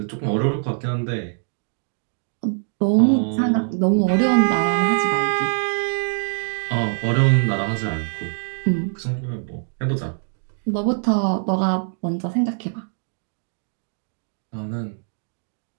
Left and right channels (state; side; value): silent; left; digital silence